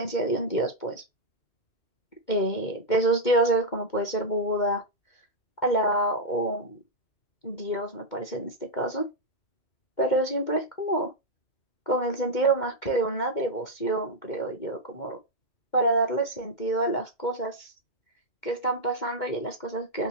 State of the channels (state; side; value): late; right; 2.2 ms